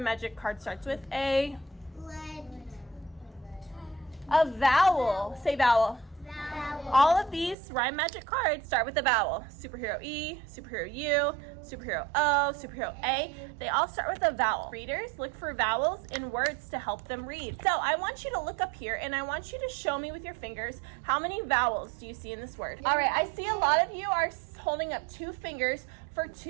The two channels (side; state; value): left; drops out; at 7.6 s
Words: Magic card starts with? A vowel. Say vowel. All of these Rhyme Magic cards start with a vowel. Superhero E, Superhero U, Superhero O, Superhero A. They all start with a vowel. Readers, look for vowels in words to help them read. So I want you to look up here, and I want you to show me with your fingers how many vowels do you see in this word. All right, I see a lot of you are holding up 2 fingers for